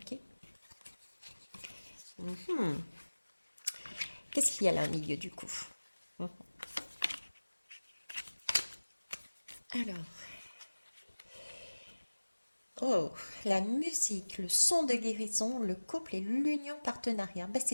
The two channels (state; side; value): inverted; both; correlation -1.00